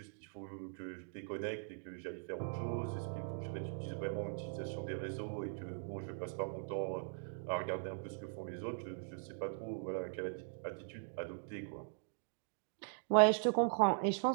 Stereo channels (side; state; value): left; silent; digital silence